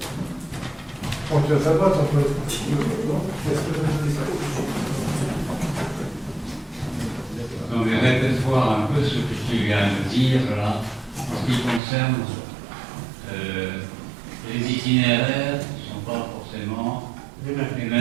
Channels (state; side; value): drops out; left; at 11.8 s